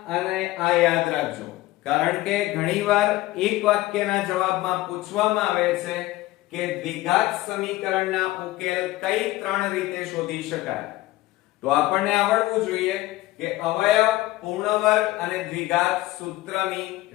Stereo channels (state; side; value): quieter; right; 17.6 dB